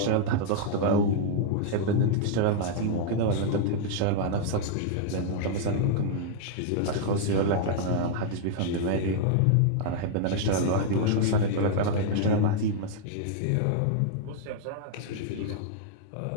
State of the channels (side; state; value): both; different; correlation -0.01